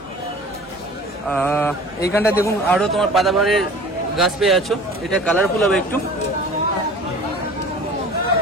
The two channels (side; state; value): both; normal; correlation 0.43